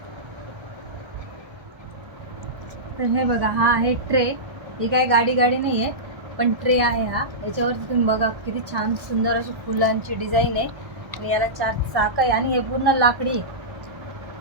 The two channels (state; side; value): late; left; 1.3 ms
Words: तर हे बघा, हा आहे ट्रे. ही काय गाडी नाही आहे, पण ट्रे आहे हा. याच्यावरती तुम्ही बघा किती छान सुंदर अशी फुलांची डिझाईन आहे आणि याला 4 चाक आहे आणि हे पूर्ण लाकडी आहे.